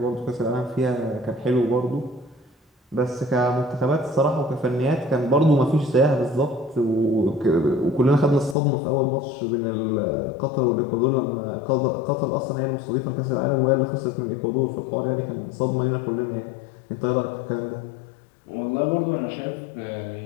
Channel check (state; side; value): drops out; right; at 8.6 s